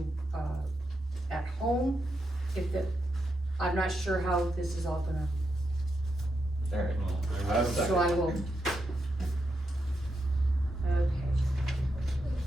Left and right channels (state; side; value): normal; both; correlation 0.84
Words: at home, I'm not sure how this is all gonna, Alright, Well, I have a second. so I will. Okay.